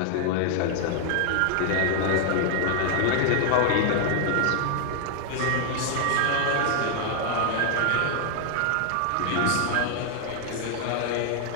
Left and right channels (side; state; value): both; different; correlation 0.00